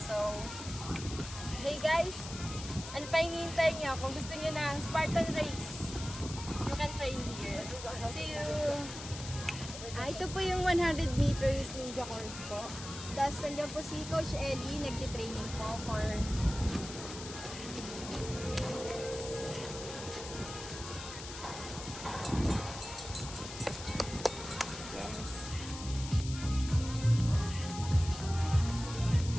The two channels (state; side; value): noise; left; hiss, 10 dB below the sound